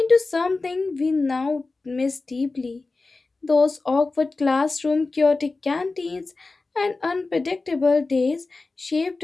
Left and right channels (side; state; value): right; quieter; 3.6 dB